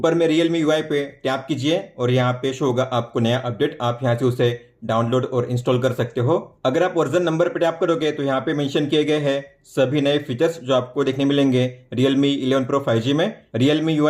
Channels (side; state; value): both; identical; correlation 1.00